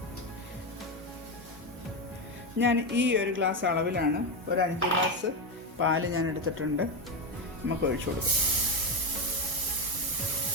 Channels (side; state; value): both; normal; correlation 0.11